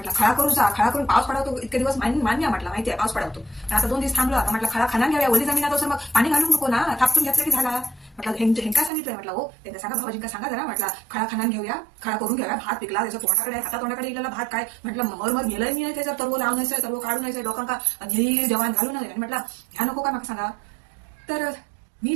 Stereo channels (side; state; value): left; drops out; at 8.9 s